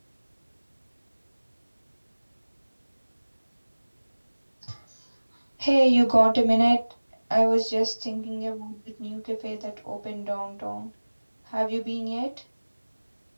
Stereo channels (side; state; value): both; inverted; correlation -1.00